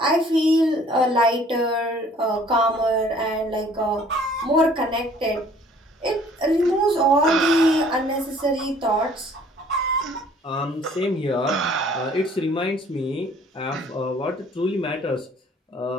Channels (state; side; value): normal; both; correlation 0.56